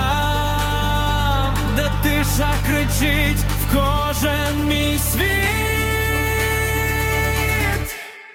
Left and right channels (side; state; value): both; identical; correlation 1.00